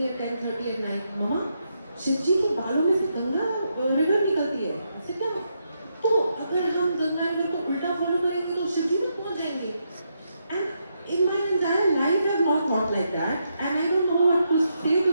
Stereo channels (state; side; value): inverted; both; correlation -0.81